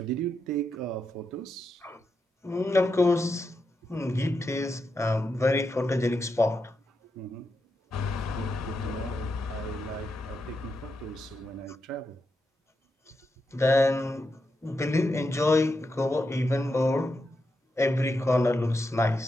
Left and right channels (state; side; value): normal; both; correlation 0.85